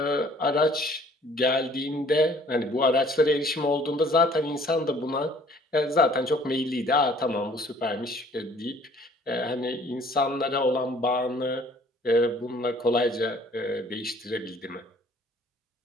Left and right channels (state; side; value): normal; both; correlation 0.56